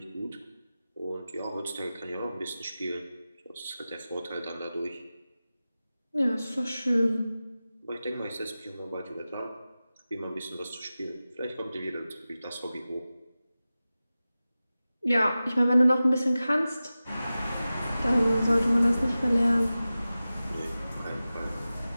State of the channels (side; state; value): both; inverted; correlation -0.95